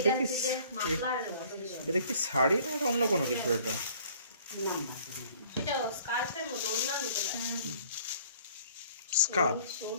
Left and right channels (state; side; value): inverted; both; correlation -0.54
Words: এটা কি শাড়ি না এটা অন্য কোনো কিছু এটা স্কার্ফ